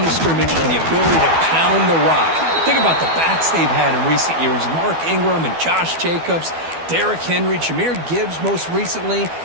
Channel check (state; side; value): late; left; 12 ms